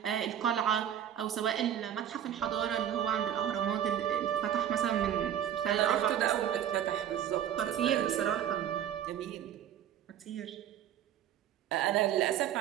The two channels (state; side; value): quieter; left; 10.2 dB